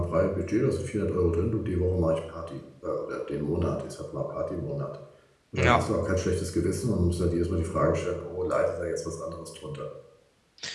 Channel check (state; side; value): identical; both; correlation 1.00